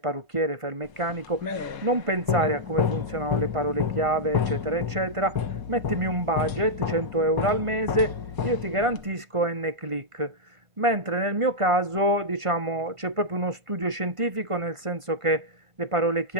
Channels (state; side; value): late; left; 1.5 ms